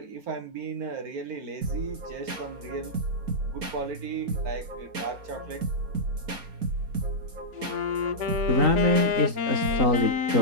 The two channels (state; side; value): late; left; 4.3 ms